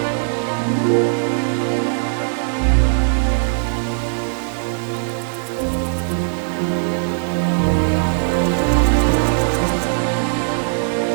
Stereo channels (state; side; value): silent; left; digital silence